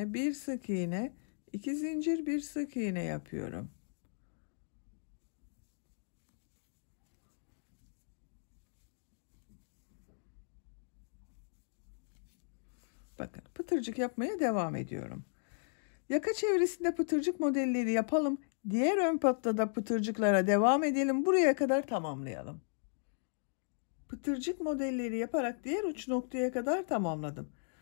bir sık iğne, 2 zincir, bir sık iğne yapıyorum. Bakın pıtırcık yapmaya devam ediyorum. Yaka çevresinde pıtırcık modelleri yapalım. Diğer ön patta da pıtırcıklara devam edelim. Buraya kadar tamamlayalım. Pıtırcık modelleri yaparak diğer uç noktaya kadar tamamladım.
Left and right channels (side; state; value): right; silent; digital silence